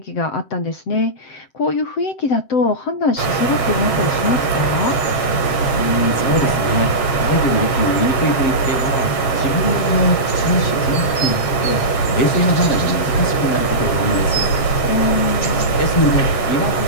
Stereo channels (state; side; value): late; right; 7.4 ms